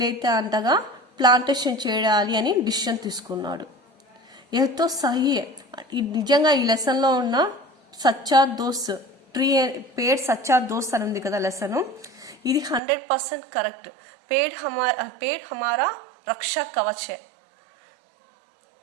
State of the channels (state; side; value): drops out; left; at 12.8 s